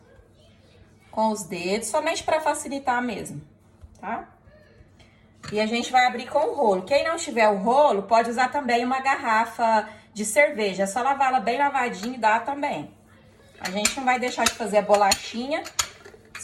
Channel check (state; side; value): identical; both; correlation 1.00